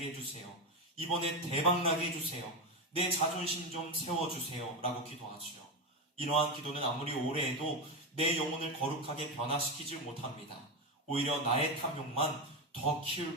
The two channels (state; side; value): normal; both; correlation 0.13